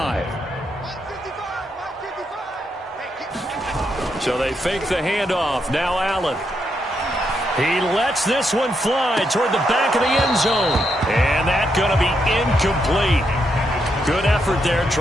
So they fake the handoff. Now Allen. He lets this one fly toward the back of the end zone. And that's going to be incomplete. Good effort there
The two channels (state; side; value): normal; both; correlation 0.80